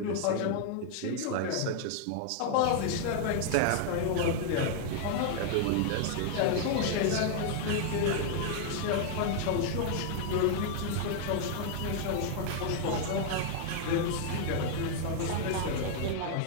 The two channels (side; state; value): both; different; correlation 0.00